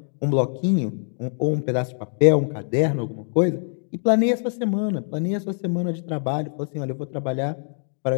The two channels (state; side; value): silent; right; digital silence